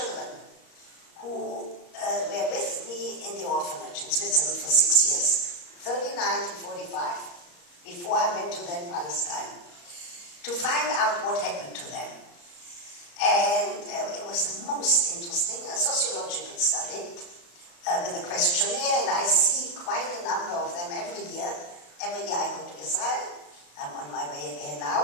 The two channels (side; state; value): right; late; 34 ms